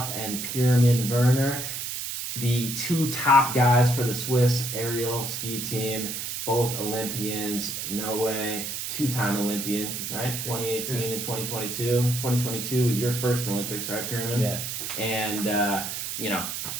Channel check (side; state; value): right; noise; hiss, 5 dB below the sound